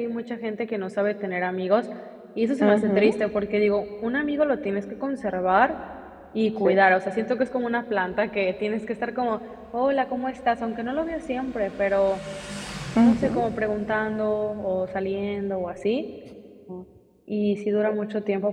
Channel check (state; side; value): identical; both; correlation 1.00